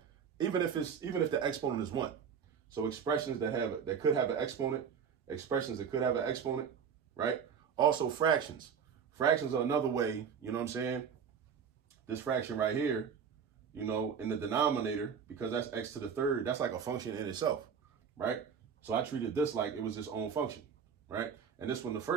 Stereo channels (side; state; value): left; quieter; 7.0 dB